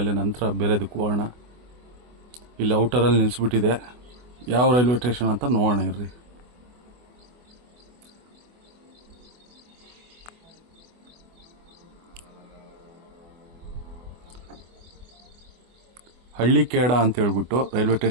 ನಂತರ ಬೇರೆದಕ್ಕೆ ಹೋಗೋಣ. ಇಲ್ಲಿ ಔಟರಲ್ಲಿ ನಿಲ್ಲಿಸ್ಬಿಟ್ಟಿದೆ. ಯಾವ ರೈಲ್ವೆ ಸ್ಟೇಷನ್ ಅಂತ ನೋಡೋಣ ಇರ್ರಿ. ಹಳ್ಳಿಕೇಡ ಅಂತ ಹೇಳ್ಬಿಟ್ಟು ರೈಲ್ವೆ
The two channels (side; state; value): left; late; 24 ms